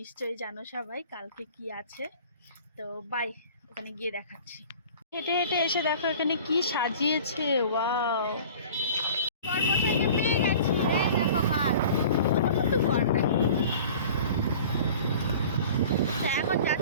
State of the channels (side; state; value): both; inverted; correlation -0.43